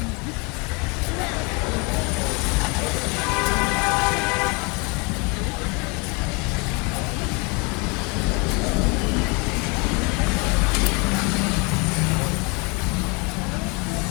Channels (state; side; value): quieter; right; 30.1 dB